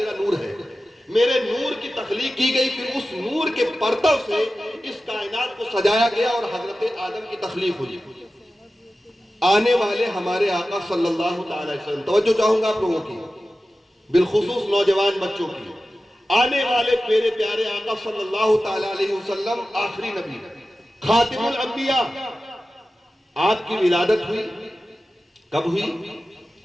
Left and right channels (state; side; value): normal; both; correlation 0.94